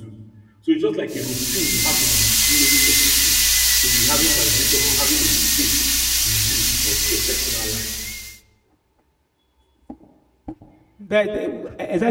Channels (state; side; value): identical; both; correlation 1.00